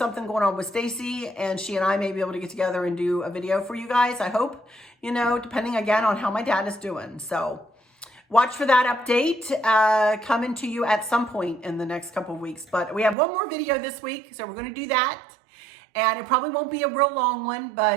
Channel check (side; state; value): left; drops out; at 13.2 s